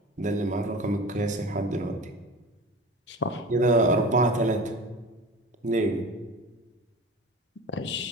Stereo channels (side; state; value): both; normal; correlation 0.35